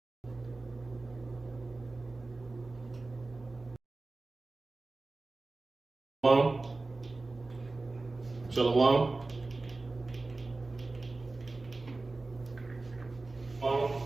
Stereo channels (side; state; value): left; quieter; 3.3 dB